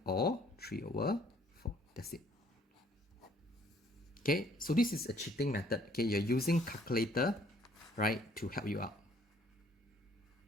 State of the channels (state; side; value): normal; both; correlation 0.61